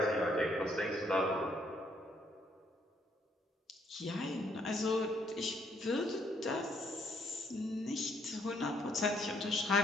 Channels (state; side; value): normal; both; correlation 0.70